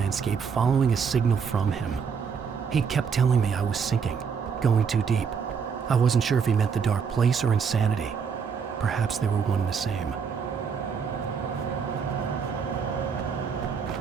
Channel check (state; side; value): quieter; left; 6.3 dB